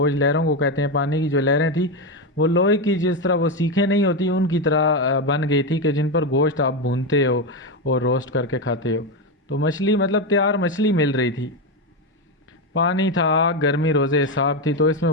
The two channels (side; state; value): both; normal; correlation 0.11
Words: लहरों को कहते हैं, पानी की जो लहरें थी वो लोहे की, जिस तरह वो सीखें नहीं होती उनकी तरह बन गई थी, कि जिन पर गोश्त आप भूनते हो और रोस्ट करके खाते हो। तो मछली मतलब तैयार मछली मिल रही थी। पानी था आग, गर्मी रोज़े हिसाब थी। तो इसमें